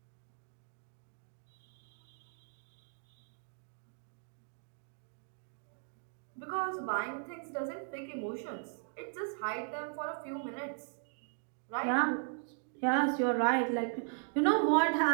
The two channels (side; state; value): left; silent; 53 dB below the other